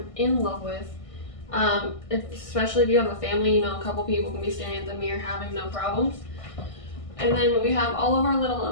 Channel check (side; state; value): right; late; 1.6 ms